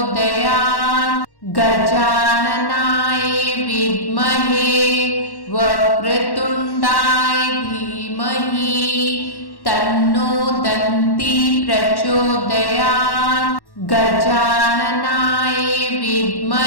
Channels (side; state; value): right; late; 1.1 ms